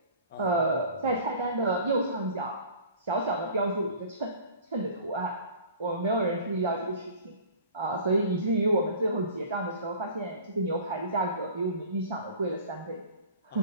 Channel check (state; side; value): inverted; both; correlation -0.43